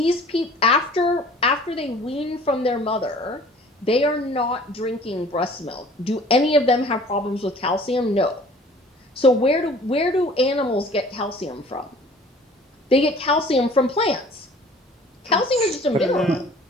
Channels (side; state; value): both; normal; correlation 0.49